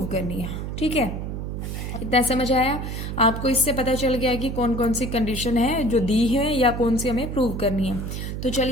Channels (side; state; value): right; noise; hum, 5 dB below the sound